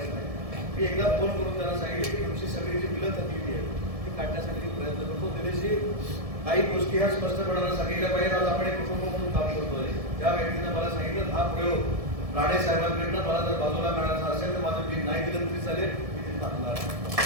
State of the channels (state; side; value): late; left; 1.7 ms